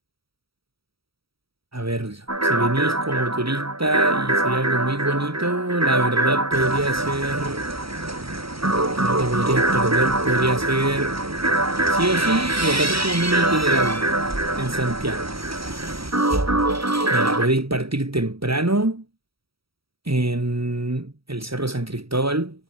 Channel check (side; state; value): left; late; 0.75 ms